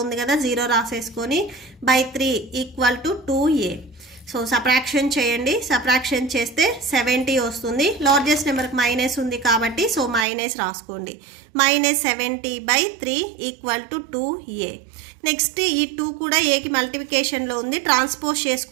ఉంది కదా, 0 రాసేసుకొని /3 = 2a. సో సబ్ట్రాక్షన్ చేయండి. సబ్ట్రాక్షన్ చేస్తే 70 వస్తుంది. లార్జెస్ట్ నెంబర్కి మైనస్ ఉంది కాబట్టి సో మైనస్ రాసుకోండి. -70/3 = 2a. నెక్స్ట్ ఈ 2 కూడా ఏకి మల్టిప్లికేషన్లో ఉంది, ట్రాన్స్పోజ్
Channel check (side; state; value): left; drops out; at 10.2 s